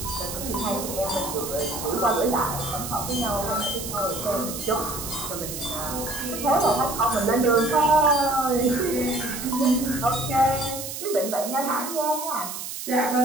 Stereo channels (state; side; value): noise; right; hiss, 7 dB below the sound